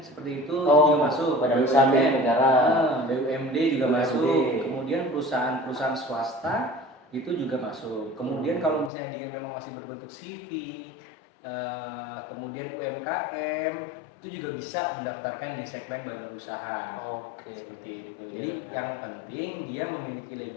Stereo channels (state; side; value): drops out; right; at 8.9 s